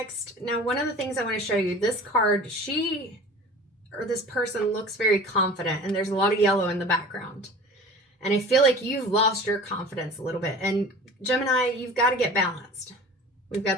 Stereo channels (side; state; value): both; normal; correlation 0.40